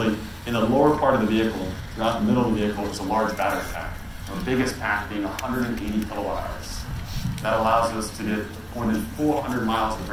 in the lower part of the vehicle, throughout the middle of the vehicle, is a large battery pack. Our biggest pack being 180 kilowatt hours. That allows us to get more than 400 miles of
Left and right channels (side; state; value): both; identical; correlation 1.00